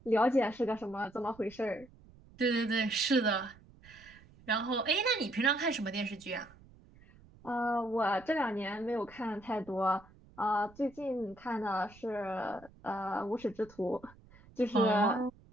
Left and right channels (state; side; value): noise; right; rumble, 24 dB below the sound